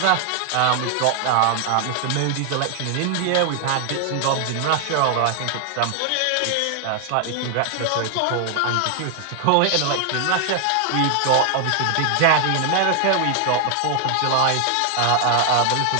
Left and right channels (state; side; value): different; both; correlation 0.00